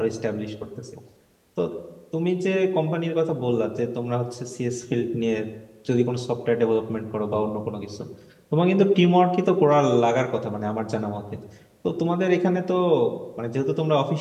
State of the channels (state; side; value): identical; both; correlation 1.00